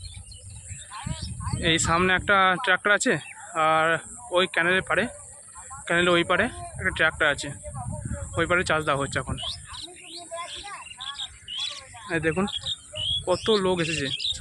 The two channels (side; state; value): both; identical; correlation 1.00